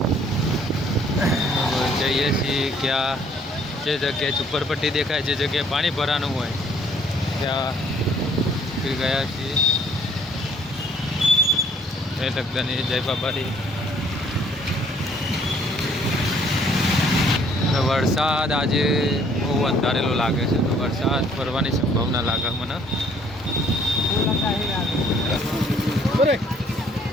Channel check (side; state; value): both; normal; correlation 0.61